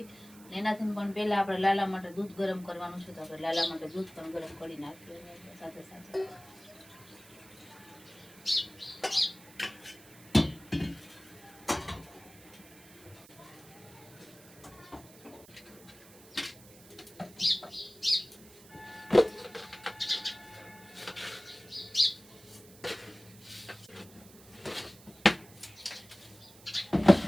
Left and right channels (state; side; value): noise; right; hiss, 21 dB below the sound